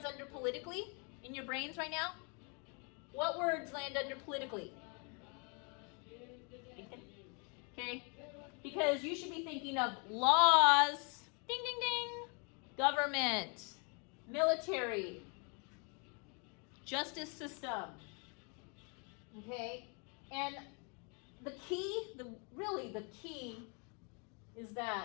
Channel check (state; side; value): quieter; right; 35.2 dB